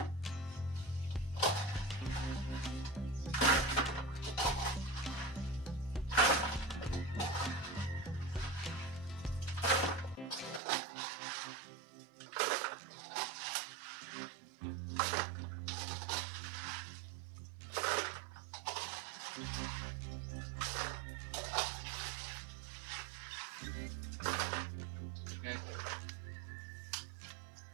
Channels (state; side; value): drops out; left; at 10.6 s